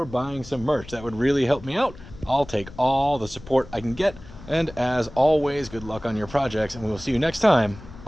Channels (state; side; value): noise; left; rumble, 17 dB below the sound